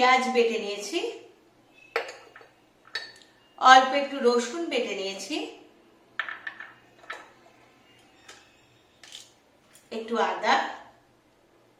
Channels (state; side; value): identical; both; correlation 1.00